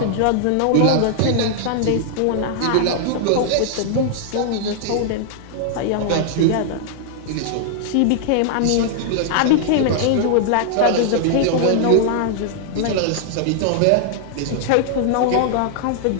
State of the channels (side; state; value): both; different; correlation -0.01